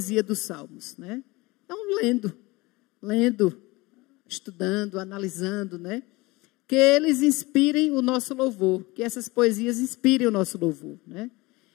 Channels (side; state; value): right; quieter; 22.5 dB